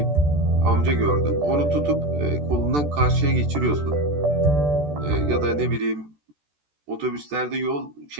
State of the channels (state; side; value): late; left; 14 ms